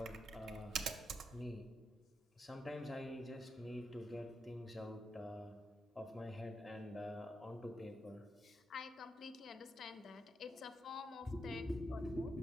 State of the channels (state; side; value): normal; both; correlation 0.84